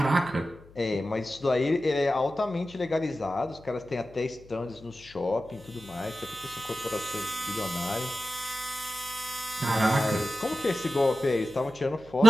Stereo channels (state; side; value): noise; left; hum, 23 dB below the sound